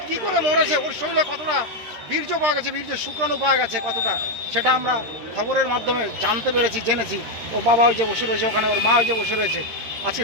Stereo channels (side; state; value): left; late; 13 ms